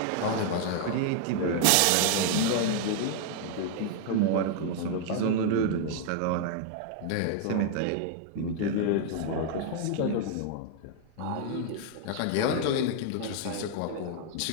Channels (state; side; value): different; both; correlation 0.00